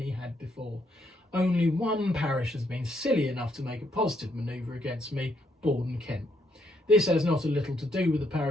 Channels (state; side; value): normal; both; correlation 0.74